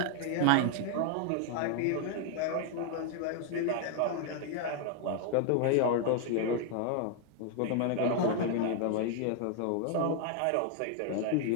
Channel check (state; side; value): different; both; correlation 0.00